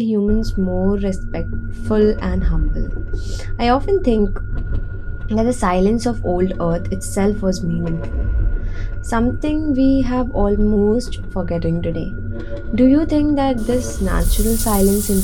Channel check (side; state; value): both; identical; correlation 1.00